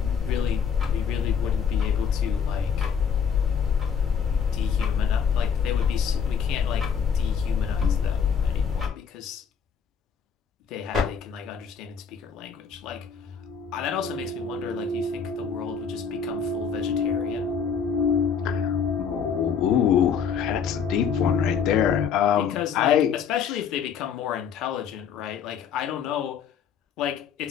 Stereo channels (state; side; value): quieter; right; 6.9 dB